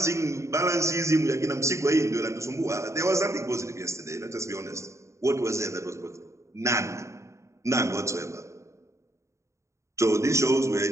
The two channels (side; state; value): left; late; 0.14 ms